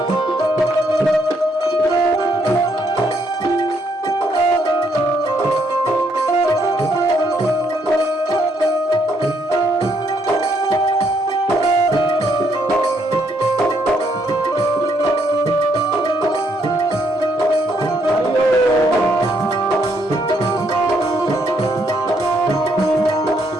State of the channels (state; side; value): normal; both; correlation 0.72